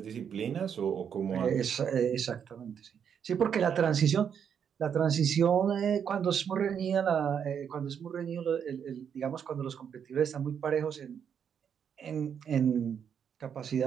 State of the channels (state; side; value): quieter; left; 7.8 dB